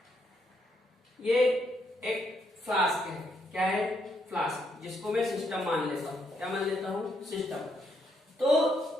ये एक फ्लास्क है। क्या है? फ्लास्क, जिसको मैं सिस्टम मान लेता हूं। क्या मान लेता हूं? सिस्टम। तो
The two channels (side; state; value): both; normal; correlation 0.75